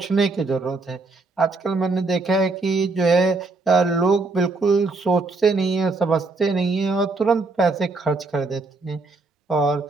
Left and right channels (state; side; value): quieter; left; 3.7 dB